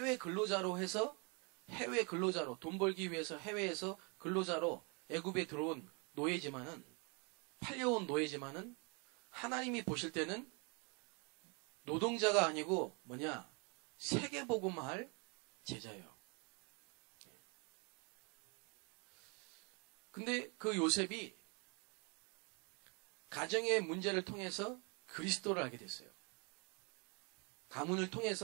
근로자로 해서 해외 근로자로 돈 벌기 위해서 해외에서 근로자로 애굽에 들어온 노예지만은 팔려온 노예지만은 하나님이 보실 때는 노동자가 아니고 뭐냐 세계복음화할 제자예요. 근데 그 요셉이 가정의 문제를 통해서 그리스도를 알게 됐어요. 가문을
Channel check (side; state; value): left; quieter; 33.3 dB